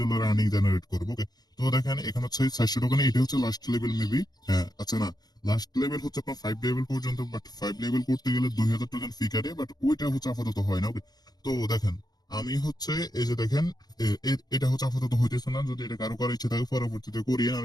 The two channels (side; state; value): right; late; 0.19 ms